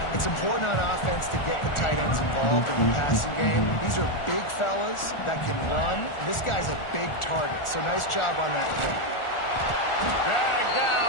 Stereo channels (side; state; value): right; late; 1.4 ms